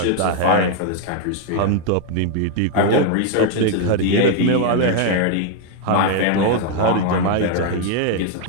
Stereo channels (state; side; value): different; both; correlation 0.00